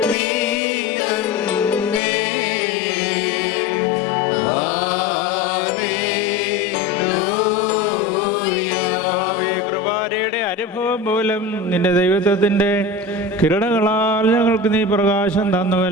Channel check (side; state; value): right; quieter; 3.1 dB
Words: നിന്റെ ദൈവത്വത്തിൻ്റെ കിരണങ്ങളാൽ ഞങ്ങൾക്ക് നീ പ്രകാശം